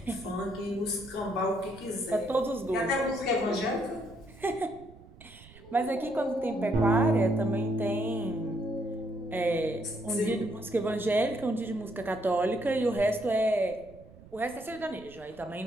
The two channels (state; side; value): noise; right; rumble, 21 dB below the sound